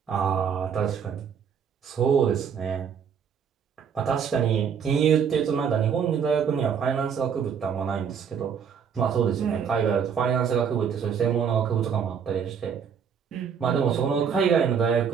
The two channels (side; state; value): left; quieter; 7.2 dB